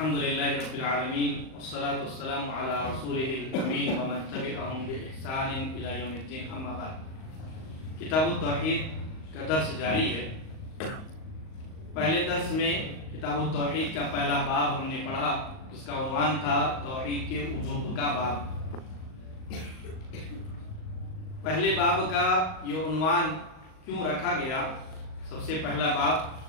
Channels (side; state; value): right; late; 38 ms